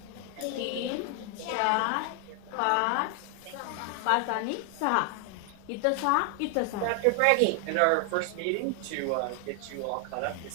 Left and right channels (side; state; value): both; different; correlation 0.00